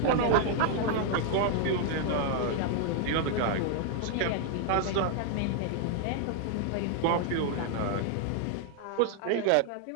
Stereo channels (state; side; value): different; both; correlation 0.00